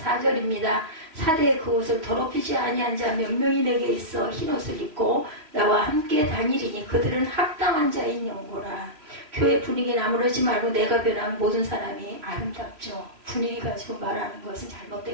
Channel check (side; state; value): left; late; 3.1 ms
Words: 사대의 그 옷을 더럽히지 아니한 자 몇 명이 내게 있어 흰옷을 입고 나와 함께 다니리니 그들은 합당한 자인 영고라. 교회 분위기 나무르지 말고 내가 변한 모든 사람이 아름답죠. 분위기 가지고 말하는 것은